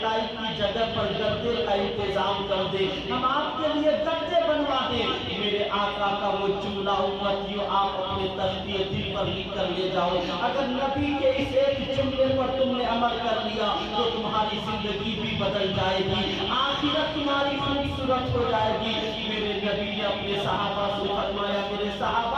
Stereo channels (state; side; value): identical; both; correlation 1.00